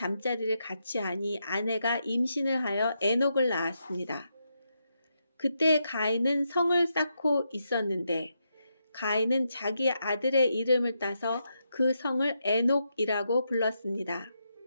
같이 하니 아내가 임신을 하여 에녹을 낳았습니다. 그때 가인은 성을 쌓고 있었는데 가인은 자기 아들의 이름을 따서 그 성을 에녹이라고 불렀습니다.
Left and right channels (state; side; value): inverted; both; correlation -0.82